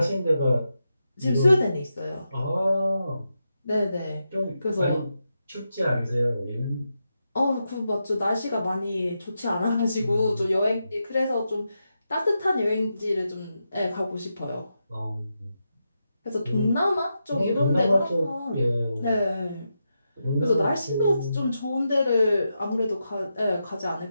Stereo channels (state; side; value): inverted; both; correlation -0.87